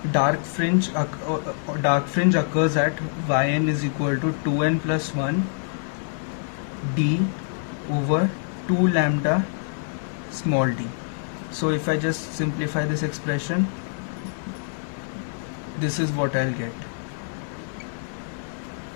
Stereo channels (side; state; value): right; silent; digital silence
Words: dark fringe occurs at yn is equal to 2n plus 1 d over 2 lambda small d. So if I just simplify this expression, this is what I'll get.